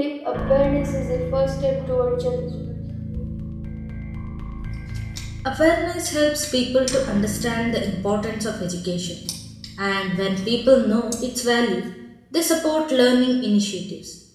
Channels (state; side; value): identical; both; correlation 1.00